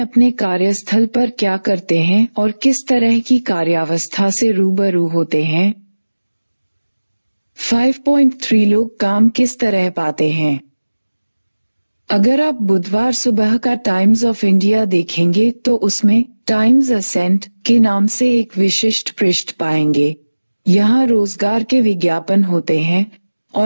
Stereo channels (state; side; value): inverted; both; correlation -1.00